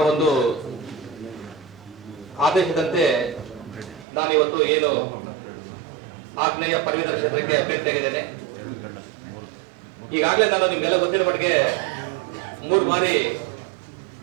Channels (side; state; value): left; drops out; at 4.0 s